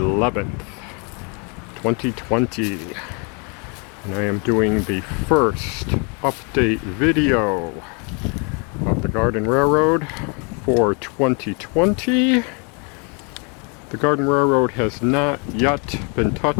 2020. And I am doing the first update video of the Garden Railroad for 2020. The Garden Railroad has not yet been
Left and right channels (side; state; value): right; quieter; 35.1 dB